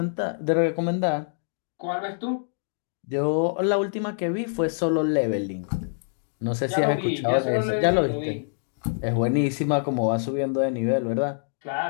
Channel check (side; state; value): right; silent; digital silence